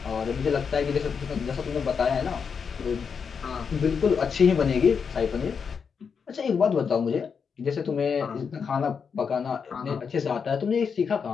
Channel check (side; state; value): right; quieter; 6.2 dB